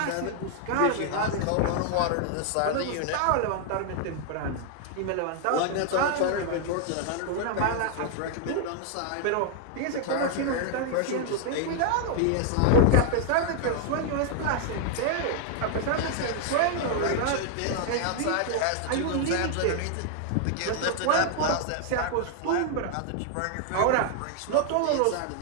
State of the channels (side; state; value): both; different; correlation 0.00